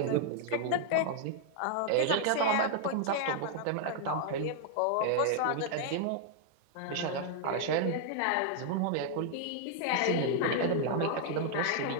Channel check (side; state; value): both; different; correlation 0.00